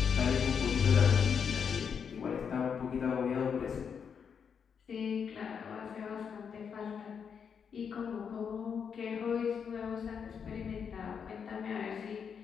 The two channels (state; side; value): quieter; right; 6.9 dB